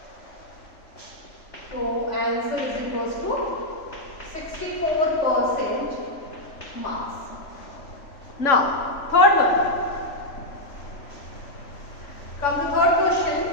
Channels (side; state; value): right; late; 3.4 ms